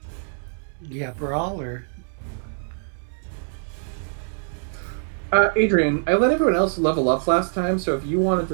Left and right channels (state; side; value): silent; left; digital silence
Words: yeah, brawl or Adrian, I let everyone else level up last time, so if you wanted